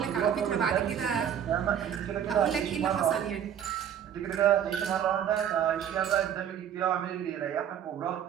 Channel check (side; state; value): left; quieter; 9.2 dB